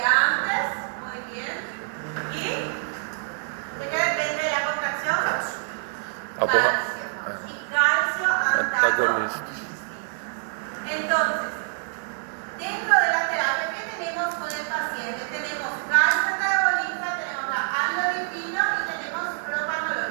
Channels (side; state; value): left; silent; 61 dB below the other